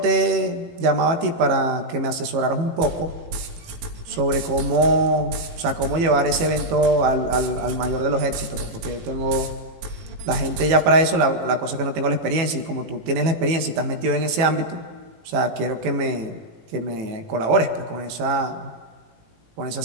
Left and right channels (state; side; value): late; left; 18 ms